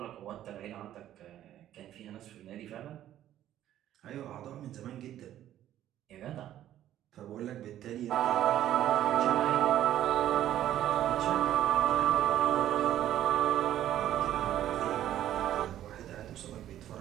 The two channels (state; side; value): quieter; left; 12.2 dB